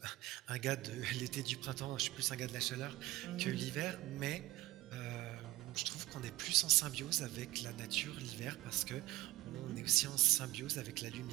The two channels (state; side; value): quieter; left; 18.1 dB